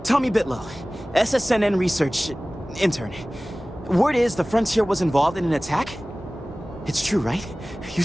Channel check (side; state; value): both; normal; correlation 0.98